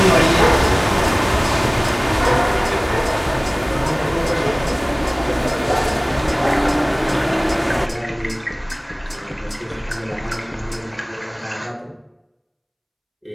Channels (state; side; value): identical; both; correlation 1.00